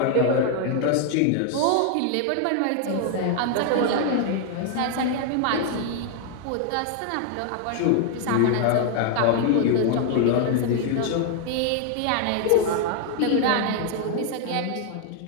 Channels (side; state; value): both; different; correlation 0.00